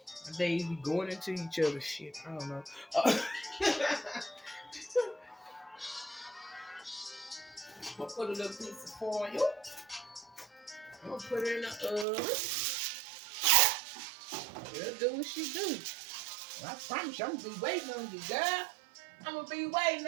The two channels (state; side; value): drops out; left; at 12.1 s